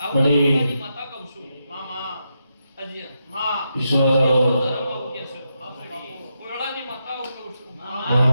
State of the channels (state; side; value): inverted; both; correlation -0.84